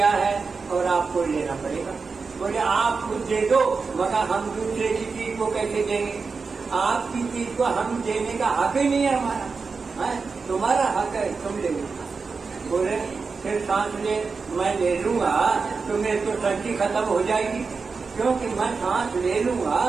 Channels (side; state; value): left; quieter; 4.7 dB